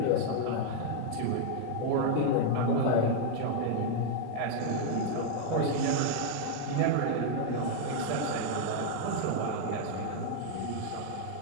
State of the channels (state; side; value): different; both; correlation 0.00